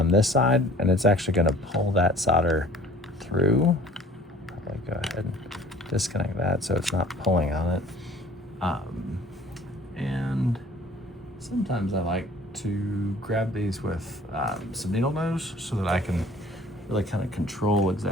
this side, and it's actually going to pull that solder through. Probably go ahead and disconnect that so it's not pulling on it. And sometimes I like to grab these with some needle nose so that I can really kind of control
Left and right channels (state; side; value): normal; both; correlation 0.51